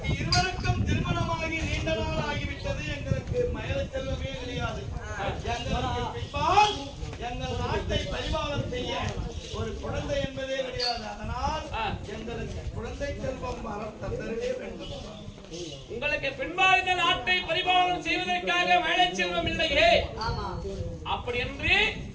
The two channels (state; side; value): identical; both; correlation 1.00